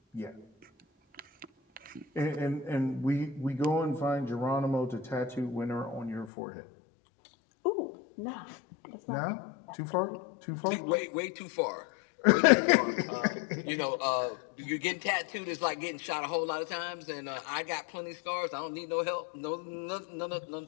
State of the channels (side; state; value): right; drops out; at 6.3 s